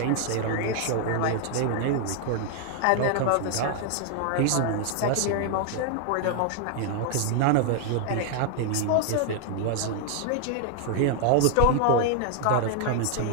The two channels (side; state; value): both; different; correlation 0.00